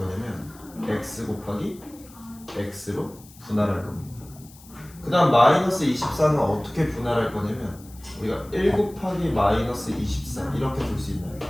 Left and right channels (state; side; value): noise; left; hiss, 23 dB below the sound